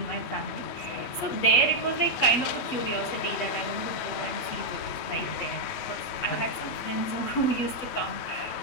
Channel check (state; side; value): late; right; 8.2 ms